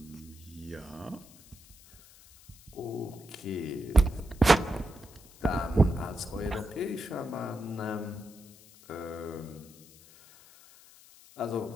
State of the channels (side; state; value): left; noise; hiss, 23 dB below the sound